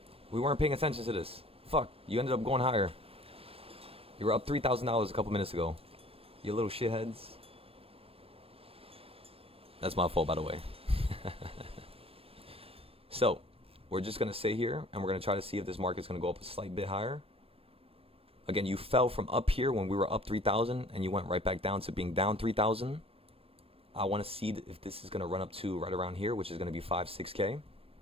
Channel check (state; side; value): late; left; 0.28 ms